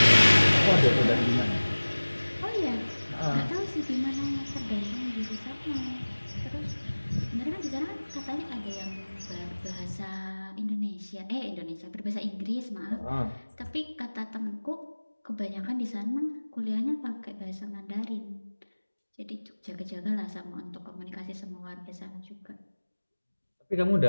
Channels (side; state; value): both; inverted; correlation -1.00